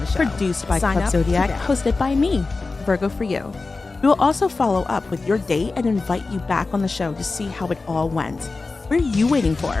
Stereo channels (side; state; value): right; quieter; 3.8 dB